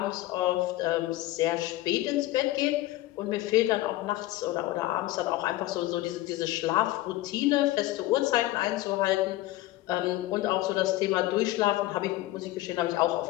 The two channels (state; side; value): quieter; right; 16.7 dB